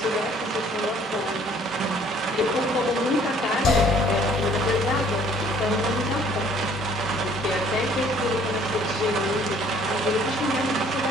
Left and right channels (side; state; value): both; normal; correlation 0.58